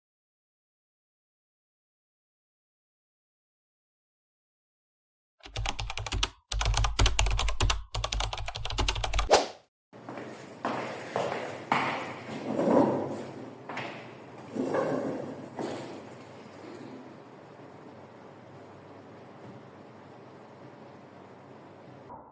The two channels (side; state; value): both; identical; correlation 1.00